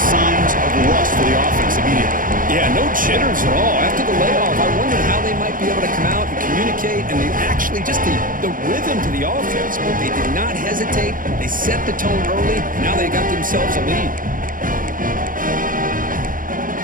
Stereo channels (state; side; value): late; left; 0.40 ms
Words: of rust for the offense immediately. Yeah, no jitters at all. After the layoff, I wondered how they might be able to come out and communicate, and they actually just the rhythm to the offense, but they did not hesitate. They set the tone early. Now they got themselves a lead.